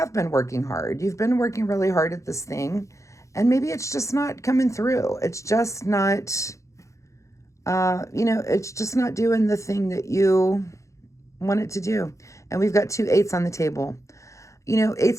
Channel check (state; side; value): late; right; 0.15 ms